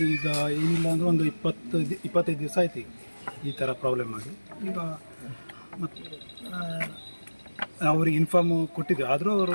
ಈಗ ಏನಿಲ್ಲ ಅಂದ್ರೆ ಒಂದು 25 ದಿವಸ ಆಯ್ತು ಈ ಥರ ಪ್ರಾಬ್ಲಮ್ ಆಗಿ. ಈಗ ಮತ್ತು ಅವ್ರಿಗೆ ಇನ್ಫಾರ್ಮ್ ಕೊಟ್ಟಿದ್ದೆ, ಆದರೂ ಅವರು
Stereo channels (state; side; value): inverted; both; correlation -1.00